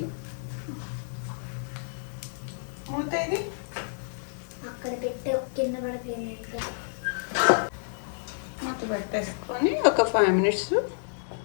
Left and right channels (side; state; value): right; silent; digital silence